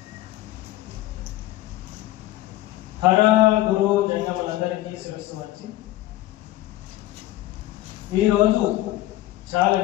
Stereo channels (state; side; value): quieter; right; 15.8 dB